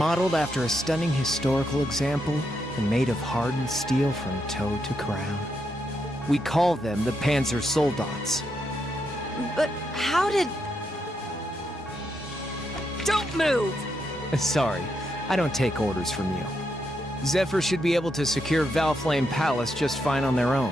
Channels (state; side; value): normal; both; correlation 0.81